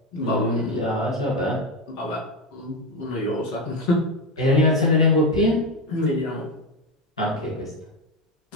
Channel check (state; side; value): normal; both; correlation 0.13